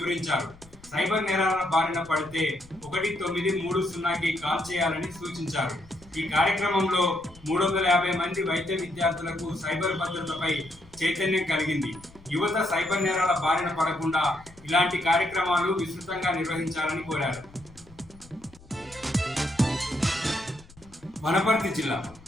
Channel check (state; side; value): noise; left; rumble, 24 dB below the sound